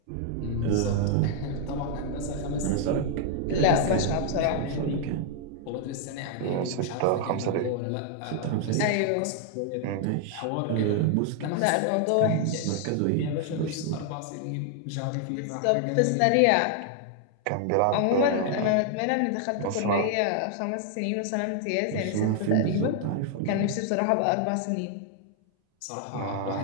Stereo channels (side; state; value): both; different; correlation 0.00